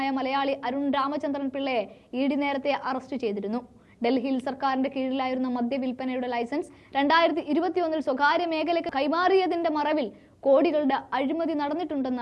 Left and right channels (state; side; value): identical; both; correlation 1.00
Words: മലയാളി അരുൺ രാമചന്ദ്രൻ പിള്ളയെ ഇഡി നേരത്തെ അറസ്റ്റ് ചെയ്തിരുന്നു. ഡൽഹിയിൽ സർക്കാരിന്റെ കീഴിലായിരുന്ന മദ്യവിൽപ്പനയുടെ ലൈസൻസ് 2021 സ്വകാര്യ മേഖലയ്ക്ക് കൈമാറിയതിന്റെ മറവിൽ കോടികളുടെ അഴിമതി